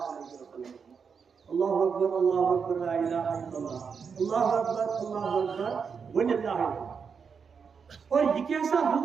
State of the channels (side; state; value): left; quieter; 6.1 dB